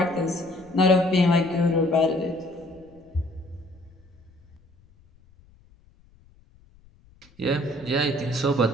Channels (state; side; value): noise; left; rumble, 28 dB below the sound